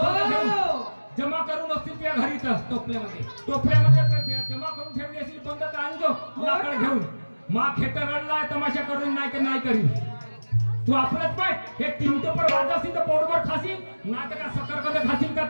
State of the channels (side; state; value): both; inverted; correlation -1.00